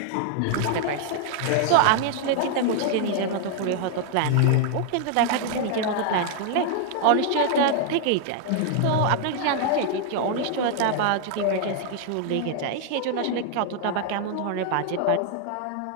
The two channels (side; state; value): both; different; correlation 0.00